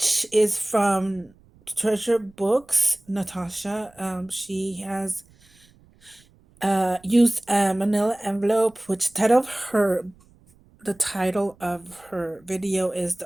is from Treasure Books. Natasha, she has used a Manila envelope, which the title of her video is the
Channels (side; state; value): right; noise; rumble, 29 dB below the sound